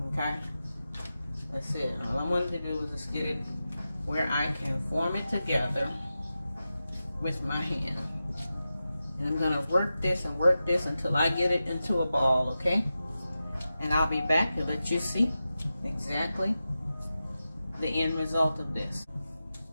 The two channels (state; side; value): inverted; both; correlation -0.92